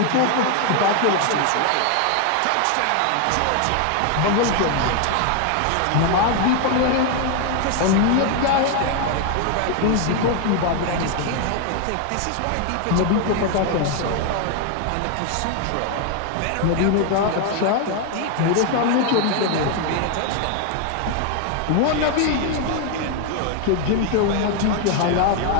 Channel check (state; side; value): different; both; correlation 0.01